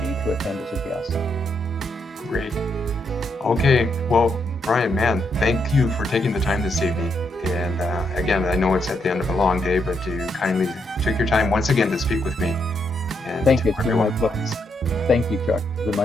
to attend as a guest. Great. Okay. Well, Brian, man, thank you for taking the time this evening. And again, I know it's at the end of a long day, but you kindly took your time once again to speak with me. And thank you. It's been my pleasure. Thank you, Chuck. It's been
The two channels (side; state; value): both; normal; correlation 0.78